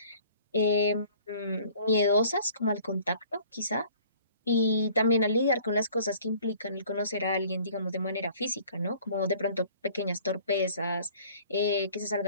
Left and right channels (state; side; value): inverted; both; correlation -0.52